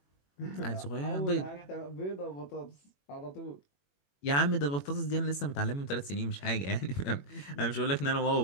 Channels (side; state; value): right; late; 21 ms